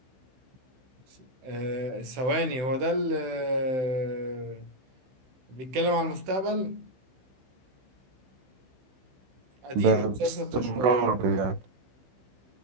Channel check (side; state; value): left; late; 16 ms